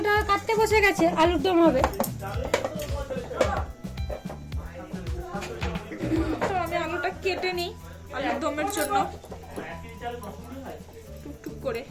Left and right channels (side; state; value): both; identical; correlation 1.00